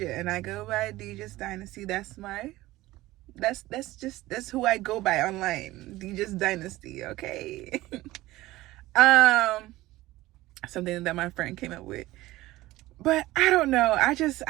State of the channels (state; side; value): quieter; left; 17.6 dB